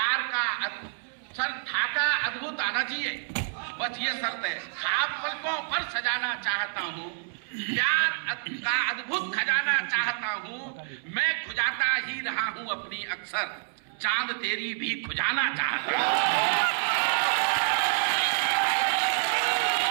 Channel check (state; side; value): silent; left; 59 dB below the other